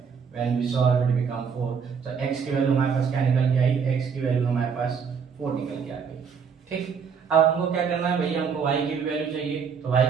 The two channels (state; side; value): quieter; left; 6.3 dB